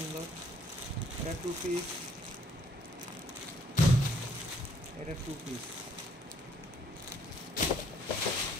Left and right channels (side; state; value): both; normal; correlation 0.64